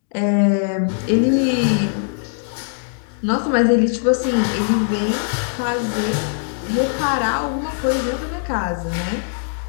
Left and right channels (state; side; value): silent; right; digital silence